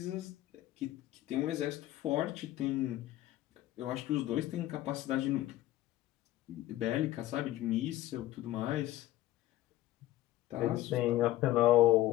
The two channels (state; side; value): quieter; right; 15.0 dB